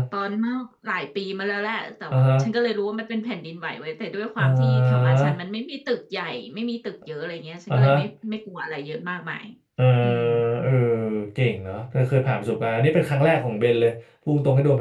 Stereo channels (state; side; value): identical; both; correlation 1.00